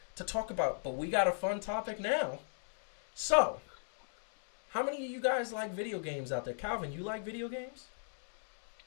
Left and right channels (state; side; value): silent; right; digital silence